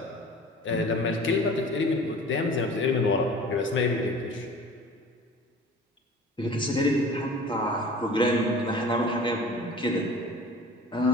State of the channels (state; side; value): normal; both; correlation 0.43